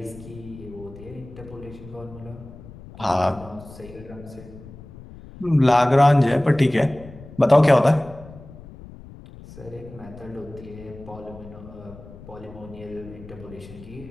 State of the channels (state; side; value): noise; left; rumble, 17 dB below the sound